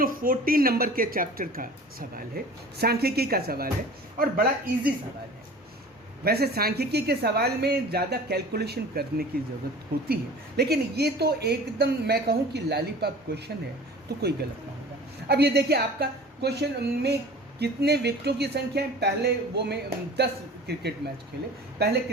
14 नंबर के चैप्टर का सवाल है, सांख्यिकी का सवाल है, और बड़ा इजी सवाल है। वैसे सांख्यिकी के सवाल में ज़्यादा कैलकुलेशन करने की ज़रूरत होती है, लेकिन ये तो एकदम मैं कहूँ कि लॉलीपॉप क्वेश्चन है, तो कोई गलत ना होगा। अब ये देखिए आपका क्वेश्चन में कितने विकेटों की संख्या है। पहले वो में 10 क्रिकेट मैच खेले, पहले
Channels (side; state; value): both; normal; correlation 0.42